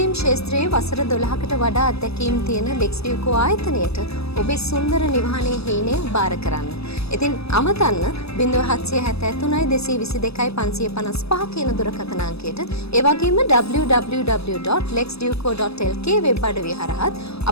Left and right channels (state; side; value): late; right; 0.78 ms